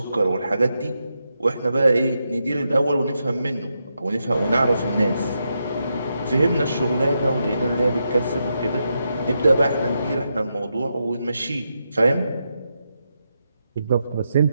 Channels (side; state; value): both; inverted; correlation -0.84